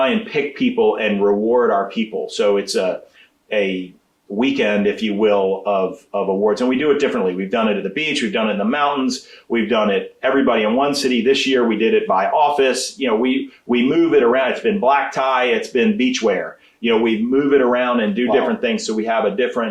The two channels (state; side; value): identical; both; correlation 1.00